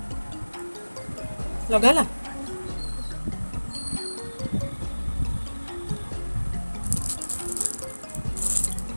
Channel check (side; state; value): both; inverted; correlation -1.00